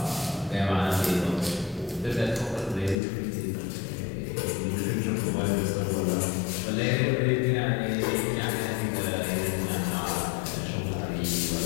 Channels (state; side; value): drops out; right; at 3.0 s